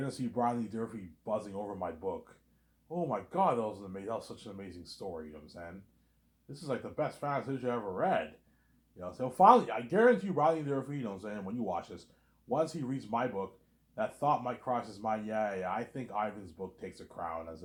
see Brian Lee Durfee buzzing over my book. Oh my god, that was such an amazing story, you know what I'm saying? This is like the best fantasy I ever read. You know, so finally, I guarantee you, Riley Durfee, you know what I'm saying, when you watch this, once he reads my book, that thought might cross his mind, yeah, I think Ivan's book takes a crown as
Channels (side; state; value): both; identical; correlation 1.00